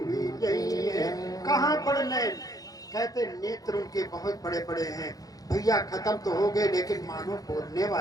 गई है। कहाँ बड़ नैन, कहते नेत्र उनके बहुत बड़े बड़े हैं भैया, खत्म तो हो गए लेकिन मानो बोलने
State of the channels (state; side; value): late; right; 0.18 ms